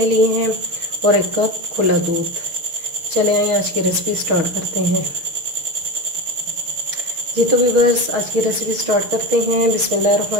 लिए हैं, और 1 कप खुला दूध। चले आइए आज की रेसिपी स्टार्ट करते हैं। जी तो व्यूअर्स, आज की रेसिपी स्टार्ट करते हैं।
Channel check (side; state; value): left; late; 6.3 ms